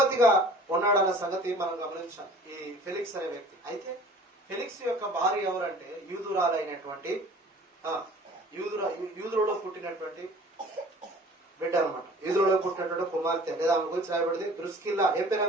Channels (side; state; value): both; normal; correlation 0.47